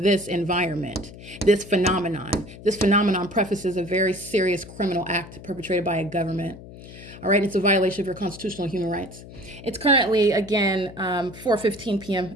this environment, this phenomenon. This phenomenon prefaces a very serious criminal act perpetrated by a government. All right, it's a violation of your constitutional human rights. It's currently, again, 4:15 p.m.,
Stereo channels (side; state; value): left; noise; hum, 16 dB below the sound